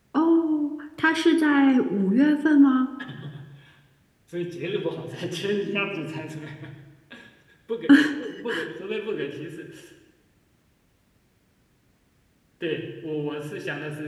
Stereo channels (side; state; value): both; identical; correlation 1.00